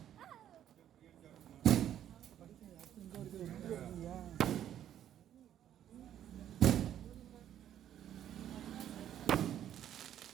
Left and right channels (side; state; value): left; quieter; 10.8 dB